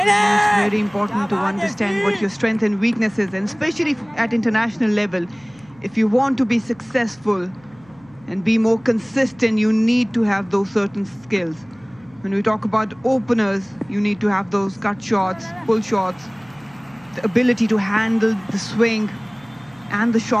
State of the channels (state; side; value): noise; right; hum, 28 dB below the sound